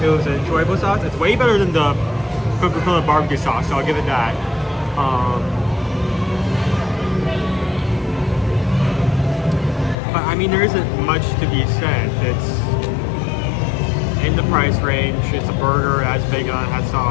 It was an enjoyable sauce. It's way better than the Coca-Cola barbecue sauce, so I'll give it that. But I mean, there isn't much to be said. It's in the price range. It's a burger, it has bacon on it, has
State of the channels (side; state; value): right; drops out; at 10.0 s